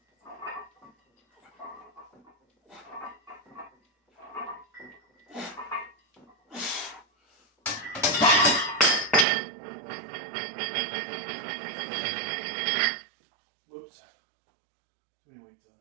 Whoops. Too many weights on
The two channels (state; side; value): drops out; left; at 9.2 s